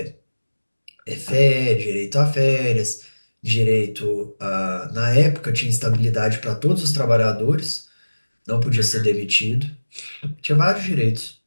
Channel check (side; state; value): both; inverted; correlation -1.00